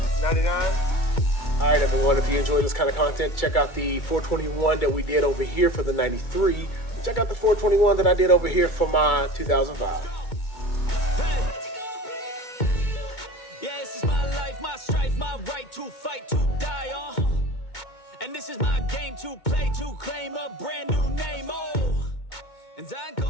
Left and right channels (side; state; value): right; late; 2.2 ms